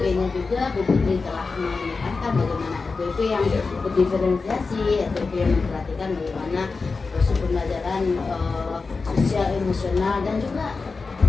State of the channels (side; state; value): right; quieter; 4.3 dB